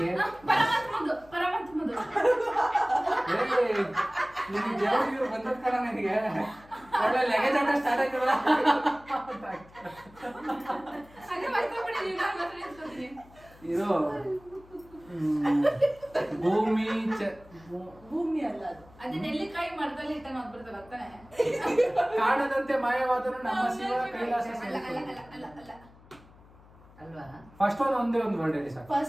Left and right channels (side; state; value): left; noise; hum, 24 dB below the sound